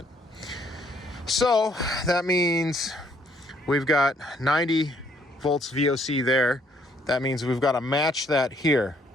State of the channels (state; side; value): normal; both; correlation 0.67